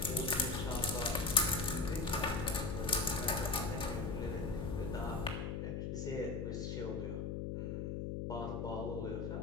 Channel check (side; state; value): left; noise; hum, 2 dB below the sound